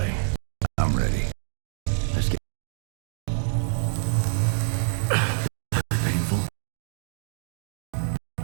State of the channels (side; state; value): left; silent; digital silence